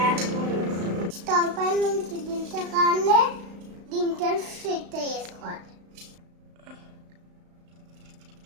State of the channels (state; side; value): late; left; 35 ms